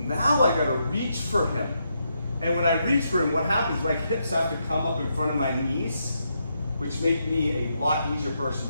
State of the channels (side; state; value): both; inverted; correlation -0.81